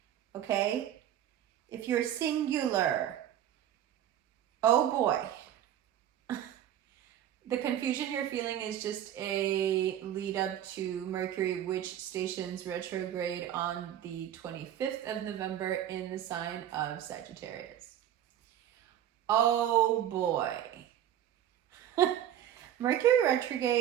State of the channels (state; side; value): quieter; left; 11.1 dB